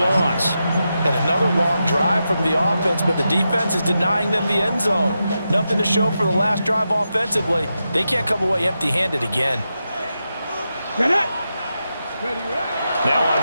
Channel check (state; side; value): inverted; both; correlation -0.88